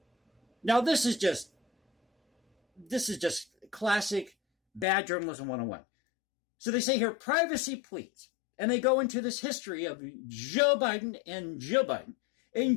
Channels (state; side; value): drops out; right; at 4.9 s